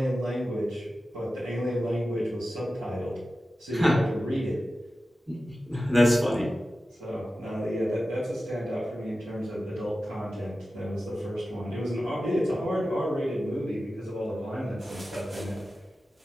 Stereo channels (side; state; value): both; normal; correlation 0.94